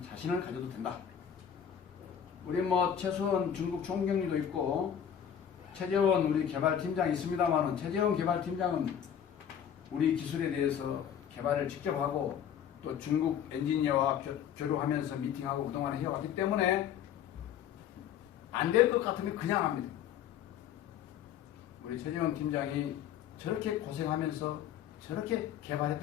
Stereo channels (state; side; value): quieter; right; 9.0 dB